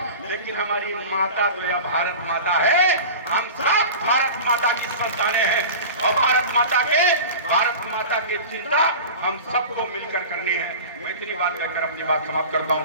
लेकिन हमारी माता तो यह भारत माता है। हम सब भारत माता की संतानें हैं, और भारत माता की चिंता हम सबको मिलकर करनी है। मैं इतनी बात कहकर अपनी बात समाप्त करता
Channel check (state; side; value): inverted; both; correlation -0.34